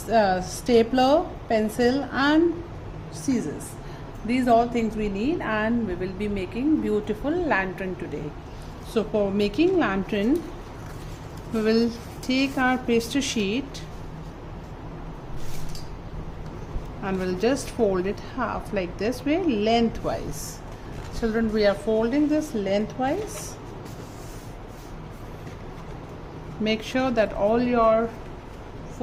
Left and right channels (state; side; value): identical; both; correlation 1.00